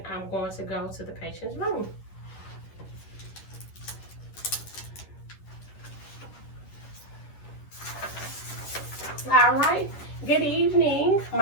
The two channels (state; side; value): late; right; 10 ms